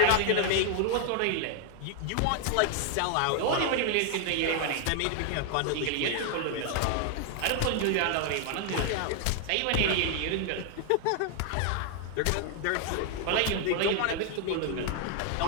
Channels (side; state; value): both; different; correlation 0.00